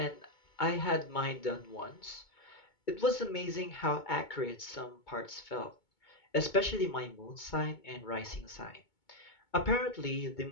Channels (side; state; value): right; late; 2.2 ms